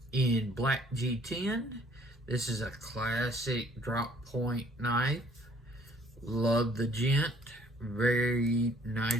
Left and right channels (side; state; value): both; normal; correlation 0.59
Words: in black G10. This is a classic drop point knife. Love the Gent. Very